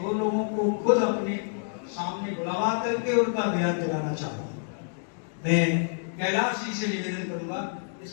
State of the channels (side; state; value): right; silent; digital silence